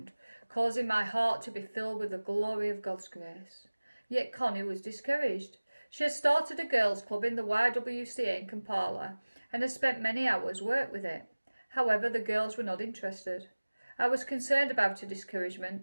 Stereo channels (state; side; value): inverted; both; correlation -1.00